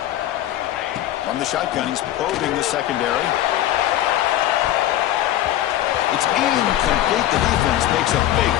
From the shotgun, he's probing the secondary. It's incomplete. The defense makes a big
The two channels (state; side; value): quieter; right; 13.2 dB